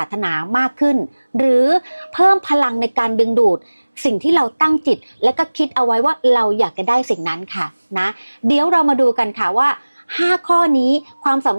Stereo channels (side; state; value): both; inverted; correlation -1.00